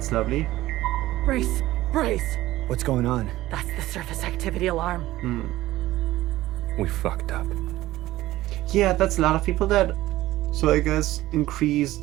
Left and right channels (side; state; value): left; quieter; 16.2 dB